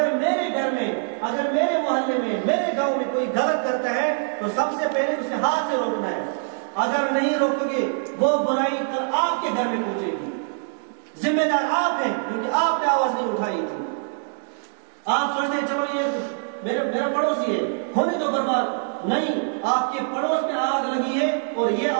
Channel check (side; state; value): left; silent; digital silence